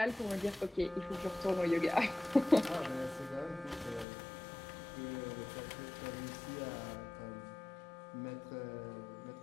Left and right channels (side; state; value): right; drops out; at 4.0 s